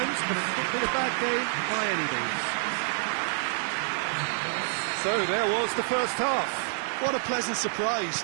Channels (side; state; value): left; silent; 59 dB below the other